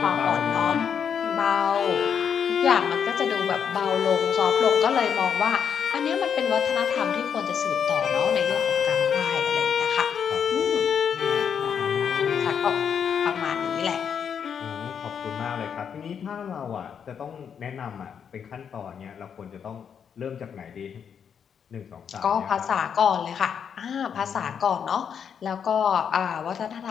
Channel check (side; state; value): right; quieter; 7.5 dB